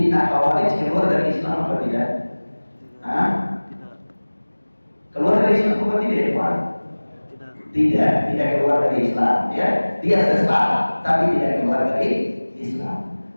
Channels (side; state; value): both; inverted; correlation -1.00